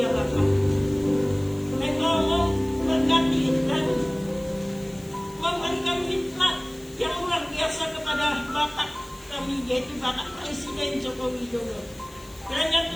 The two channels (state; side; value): noise; left; hiss, 24 dB below the sound